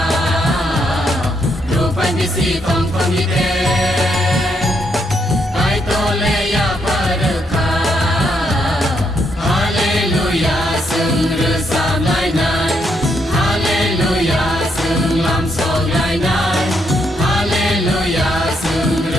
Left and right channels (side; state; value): both; normal; correlation 0.76